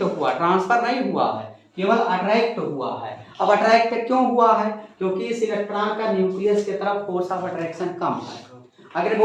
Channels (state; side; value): identical; both; correlation 1.00